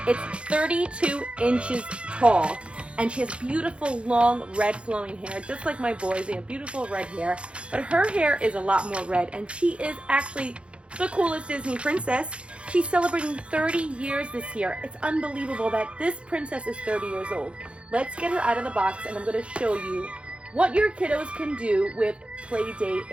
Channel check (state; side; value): late; left; 0.059 ms